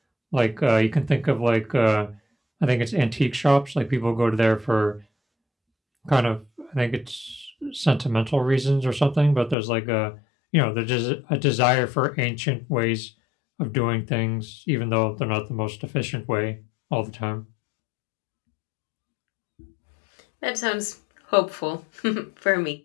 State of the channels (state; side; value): drops out; right; at 9.6 s